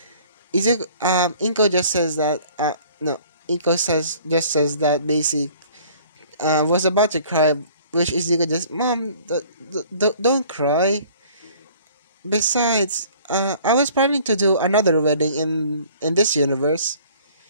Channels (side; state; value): both; inverted; correlation -0.52